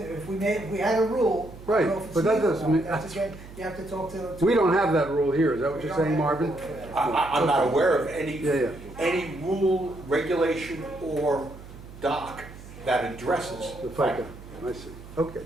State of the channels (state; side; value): noise; right; hum, 16 dB below the sound